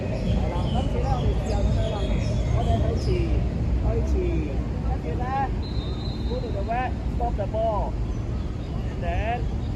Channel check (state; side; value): identical; both; correlation 1.00